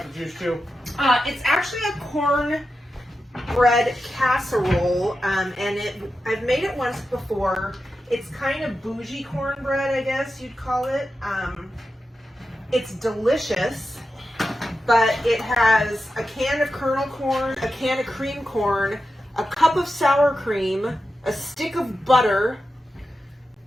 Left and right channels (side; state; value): both; normal; correlation 0.91